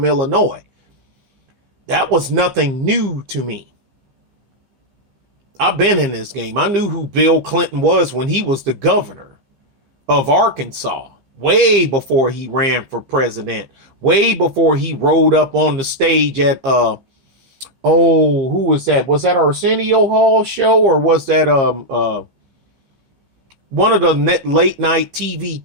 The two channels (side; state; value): left; late; 15 ms